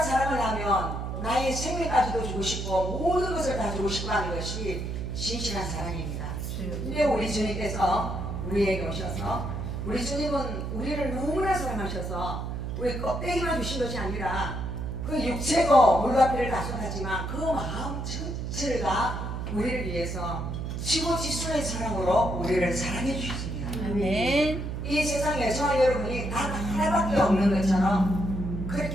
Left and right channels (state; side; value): noise; right; hum, 4 dB below the sound